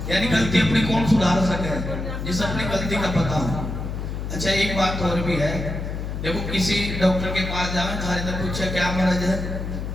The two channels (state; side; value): noise; left; hum, 5 dB below the sound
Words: यानी गलती अपनी कौन सुधार सके, जिस अपनी गलती का पता हो। अच्छा एक बात और भी है, देखो किसी डॉक्टर के पास जावे थारे तो पूछे क्या मर्ज है,